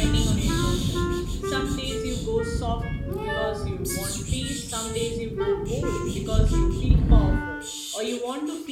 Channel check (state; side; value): identical; both; correlation 1.00